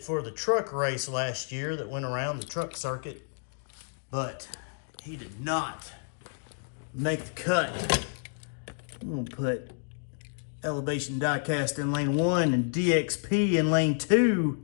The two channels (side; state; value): right; silent; 58 dB below the other